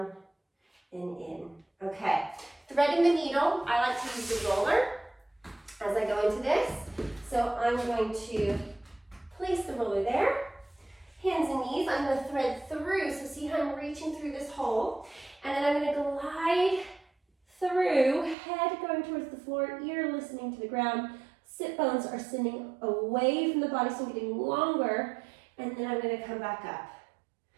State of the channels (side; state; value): left; drops out; at 18.4 s